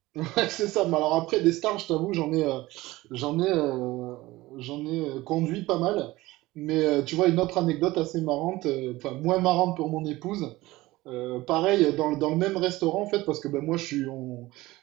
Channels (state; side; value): quieter; left; 18.8 dB